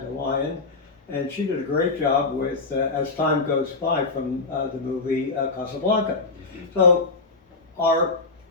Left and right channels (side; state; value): right; quieter; 3.8 dB